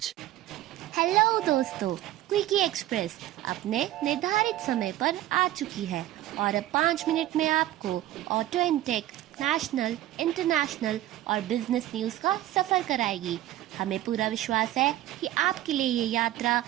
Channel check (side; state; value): left; quieter; 14.4 dB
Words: Hello दोस्तों, quickie express अपने निर्धारित समय पर आ चुकी है और अब 5 मिनट में आपको auto and tech, national, international और बिजनेस न्यूज का सफर कराएगी। हमें पूरा विश्वास है कि आपके लिए ये यात्रा